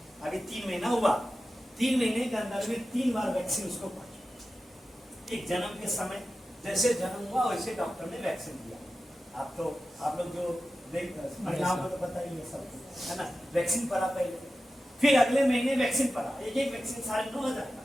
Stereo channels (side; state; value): both; normal; correlation 0.93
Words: अभी 3 महीना हुआ, 3 महीने के अंदर में 3 बार वैक्सीन उसको पहुंची। एक जन्म के समय जैसे जन्म हुआ वैसे डॉक्टर ने वैक्सीन दिया। आप लोग जो परिणाम को तो पता ही है सब, है ना, वैक्सीन पड़ा पहले, फिर अगले महीने वैक्सीन पड़ा, एक वैक्सीन 9,500 का,